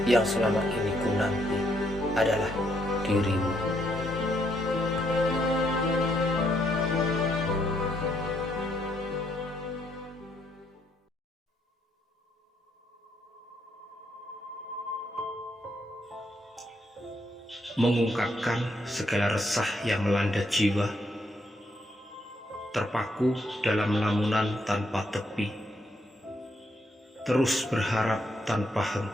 yang selama ini ku nanti adalah dirimu. Mengungkapkan segala resah yang melanda jiwa, terpaku dalam lamunan tanpa tepi, terus berharap tanpa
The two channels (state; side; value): normal; both; correlation 0.74